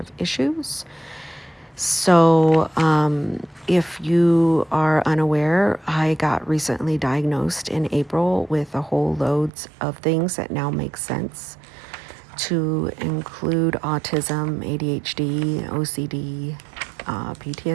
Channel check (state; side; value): drops out; left; at 9.5 s